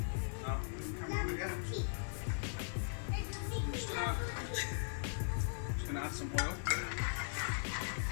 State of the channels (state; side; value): silent; right; digital silence